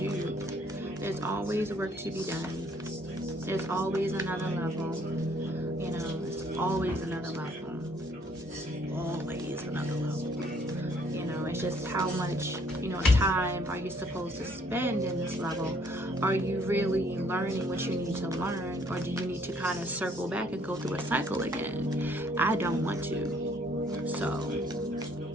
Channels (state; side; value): normal; both; correlation 0.64